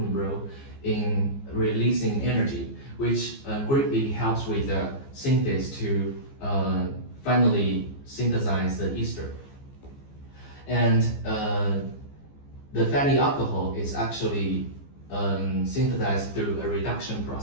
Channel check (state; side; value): late; right; 15 ms